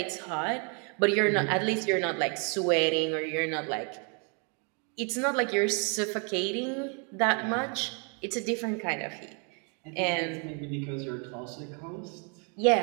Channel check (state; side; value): quieter; left; 37.1 dB